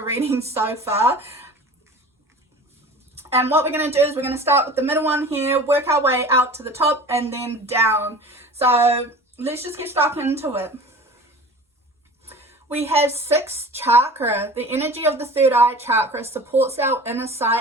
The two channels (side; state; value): both; normal; correlation 0.40